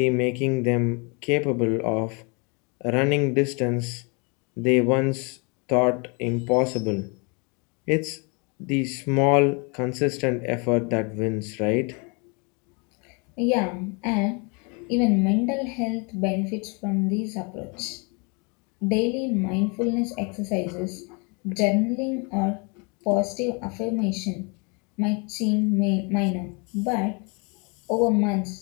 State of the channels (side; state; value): right; quieter; 32.5 dB